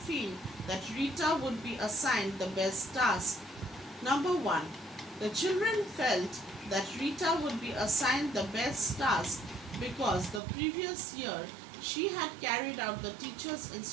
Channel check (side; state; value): left; drops out; at 10.4 s